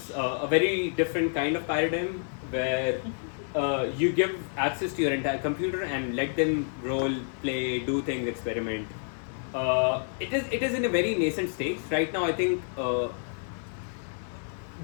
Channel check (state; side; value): silent; right; 59 dB below the other